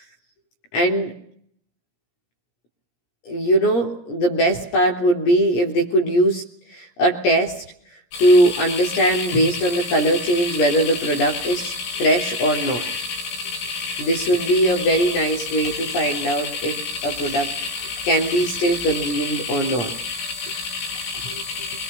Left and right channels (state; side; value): late; right; 17 ms